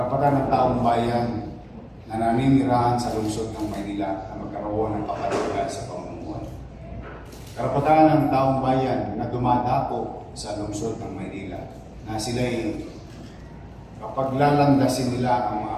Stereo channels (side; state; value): both; identical; correlation 1.00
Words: ng taong bayan na naninirahan sa lungsod ng Maynila na magkaroon ng kapaligiran sa pamumuhay. Karapatan ng taong bayan na dumadako sa lungsod ng Maynila na sila'y kapag lalandasin nila ang